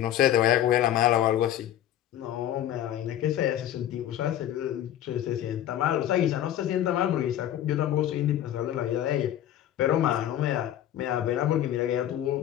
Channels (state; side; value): quieter; right; 11.8 dB